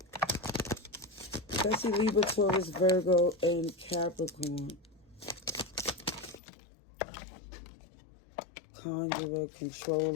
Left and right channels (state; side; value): drops out; right; at 6.4 s